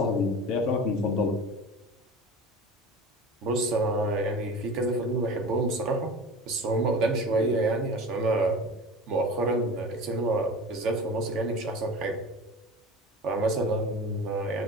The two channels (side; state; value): both; normal; correlation 0.35